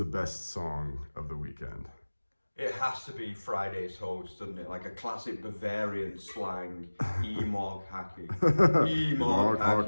best song of the weekend? It has to be Friday's host, doesn't it? Like a classic Bavarian slang, E-Mog hacking. E-Mog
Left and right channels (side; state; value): both; inverted; correlation -1.00